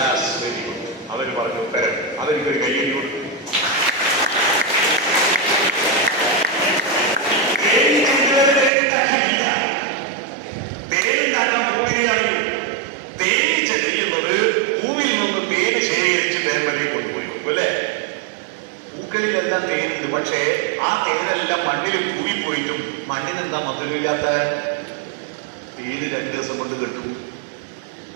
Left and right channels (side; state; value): left; drops out; at 8.7 s